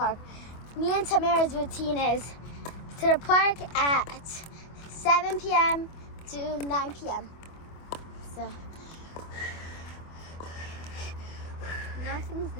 Me and Tamara's routine is to the park at 7 p.m. to 9 p.m. So Nothing's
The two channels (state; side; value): late; right; 25 ms